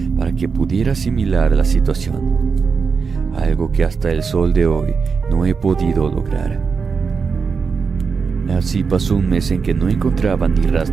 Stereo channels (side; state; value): left; quieter; 5.4 dB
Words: para que pudiera asimilar la situación, algo que hasta el sol de hoy no he podido lograr. Así pasó un mes en que no encontraba ni